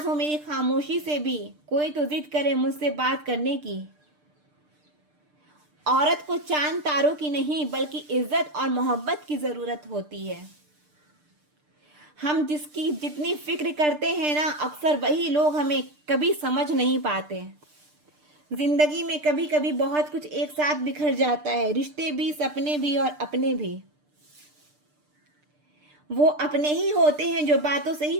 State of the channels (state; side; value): late; left; 6.7 ms